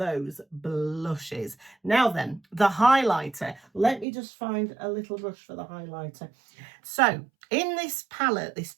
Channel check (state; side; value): drops out; left; at 4.0 s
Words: blushes. Now then, the highlighter. Let me just find a little brush for the highlighter. So in this palette, this